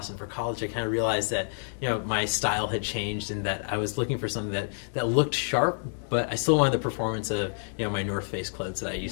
for college, I kind of realized that my style had changed, and that I was looking for something that looked sharp, but I still wanted the performance of my North Face clothes that I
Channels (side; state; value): right; silent; digital silence